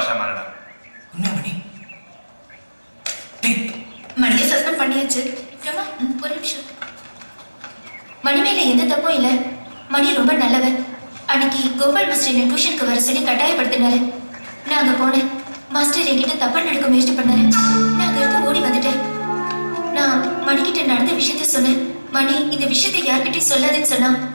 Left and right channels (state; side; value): inverted; both; correlation -1.00